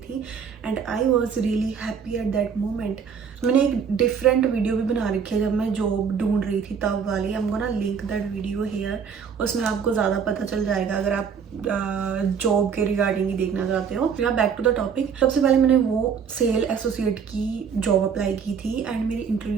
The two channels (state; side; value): quieter; left; 6.7 dB